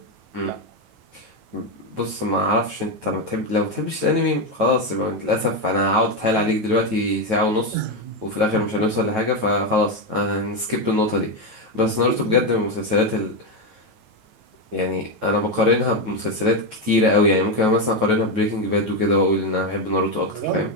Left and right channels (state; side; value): late; left; 9.3 ms